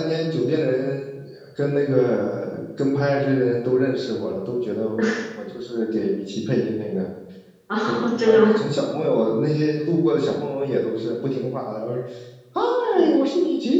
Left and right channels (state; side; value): identical; both; correlation 1.00